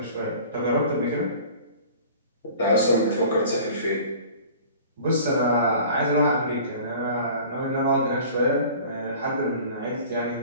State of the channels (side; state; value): both; inverted; correlation -0.44